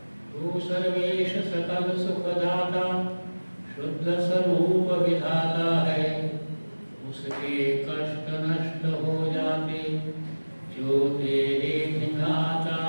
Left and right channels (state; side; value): inverted; both; correlation -1.00